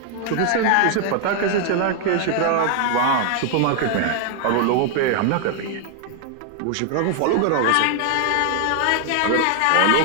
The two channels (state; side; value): different; both; correlation 0.00